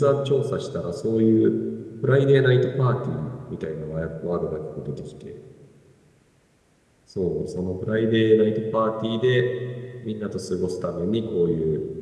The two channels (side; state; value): both; identical; correlation 1.00